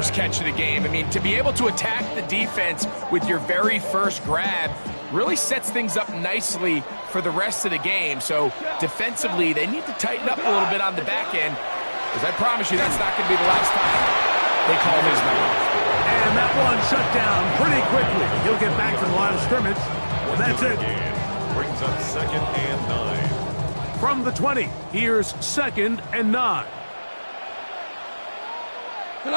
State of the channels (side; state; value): both; inverted; correlation -1.00